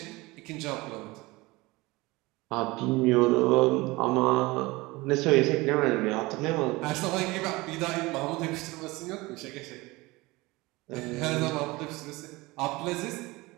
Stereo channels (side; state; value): left; quieter; 21.9 dB